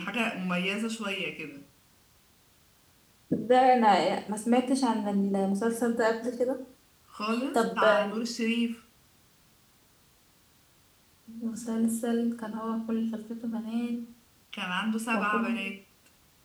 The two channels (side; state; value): both; identical; correlation 1.00